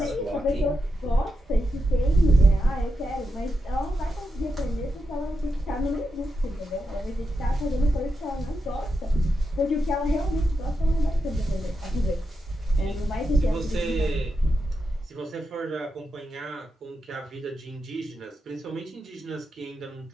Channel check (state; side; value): normal; both; correlation 0.86